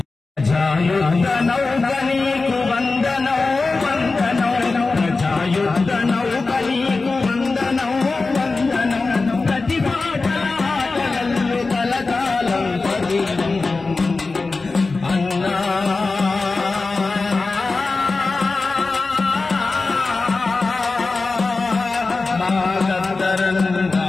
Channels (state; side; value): quieter; right; 3.8 dB